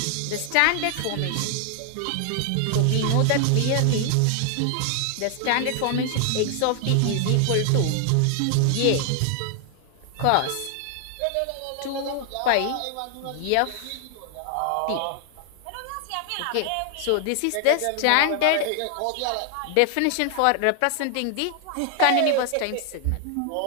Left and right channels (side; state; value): both; different; correlation 0.00